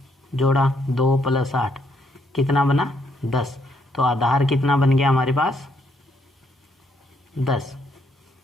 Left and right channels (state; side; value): normal; both; correlation 0.73